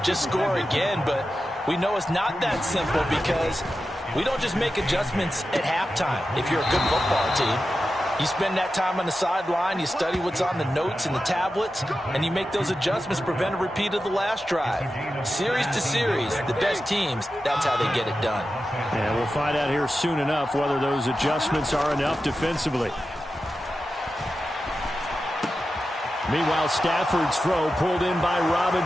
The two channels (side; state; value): both; normal; correlation 0.92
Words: Just score again, but we know it's not that simple because we don't just make adjustments at halftime if you're a good football team. You spend that time on the sideline, you study what's on the notes and the tablets, and you make those adjustments, prevent a repeat of the last drive. Series to series, the best teams, that's how they get it done. And we'll find out here soon enough whether those adjustments are enough defensively. Meanwhile, Stafford's throw pulled in by